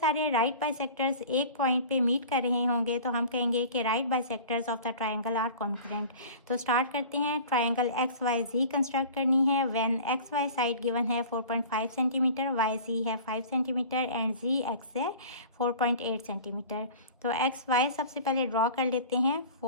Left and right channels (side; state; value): both; inverted; correlation -0.40